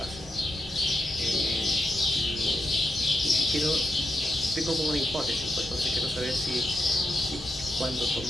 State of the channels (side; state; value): both; normal; correlation 0.86